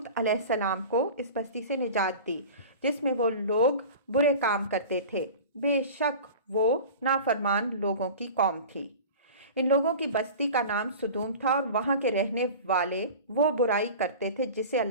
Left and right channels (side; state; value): both; inverted; correlation -0.36